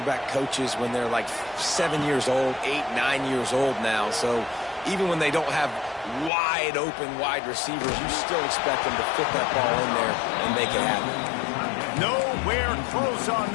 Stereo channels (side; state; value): right; drops out; at 6.3 s